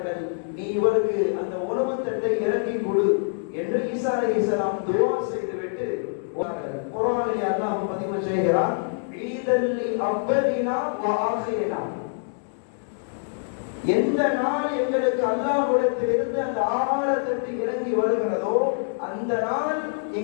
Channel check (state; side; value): silent; right; digital silence